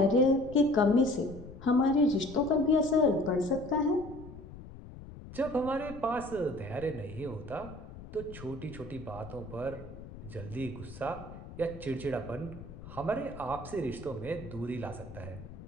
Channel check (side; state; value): left; noise; rumble, 14 dB below the sound